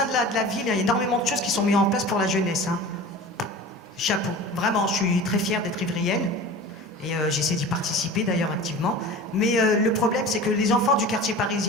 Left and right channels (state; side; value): normal; both; correlation 0.36